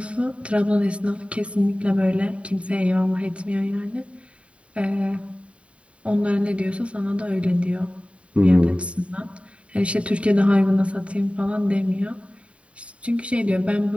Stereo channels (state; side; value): late; left; 0.063 ms